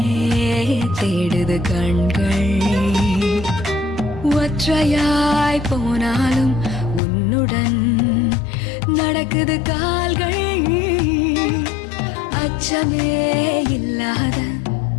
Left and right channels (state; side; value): drops out; right; at 7.0 s